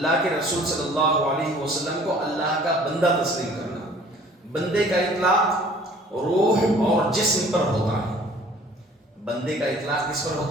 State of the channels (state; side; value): normal; both; correlation 0.52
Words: کے رسول صلی اللہ علیہ وسلم کو اللہ کا بندہ تسلیم کرنا، بندے کا اطلاق روح اور جسم پر ہوتا ہے، بندے کا اطلاق کس پر